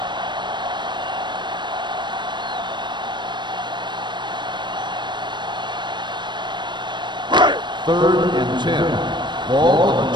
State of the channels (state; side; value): late; left; 0.22 ms